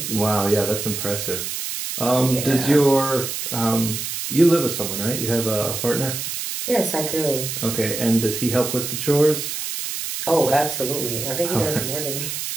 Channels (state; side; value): noise; right; hiss, 5 dB below the sound